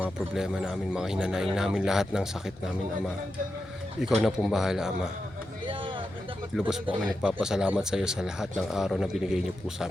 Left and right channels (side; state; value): both; normal; correlation 0.88